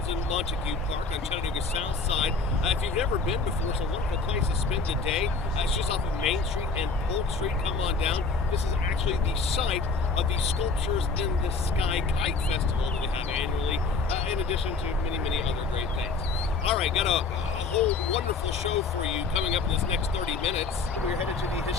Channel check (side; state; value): right; quieter; 4.2 dB